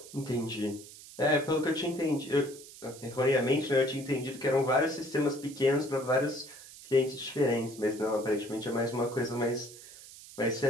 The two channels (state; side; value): noise; right; hiss, 17 dB below the sound